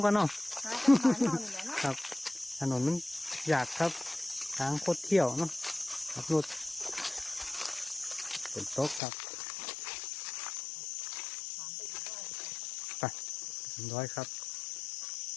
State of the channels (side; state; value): right; drops out; at 9.0 s